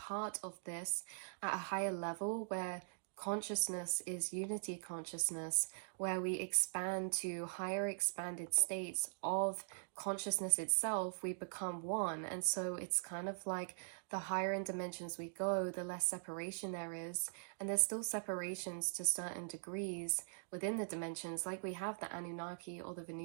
of this at a higher level where consciousness is unity consciousness, where we expand to higher expanded states of consciousness itself. We become one, and so it's kind of like the higher in dimensions we go, the less separation there is. And there's still separations to certain degrees within the dimensions, like we have the Anunnaki or the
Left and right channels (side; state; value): left; silent; digital silence